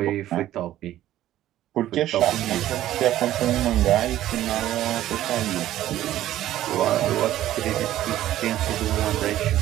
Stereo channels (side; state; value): left; quieter; 13.4 dB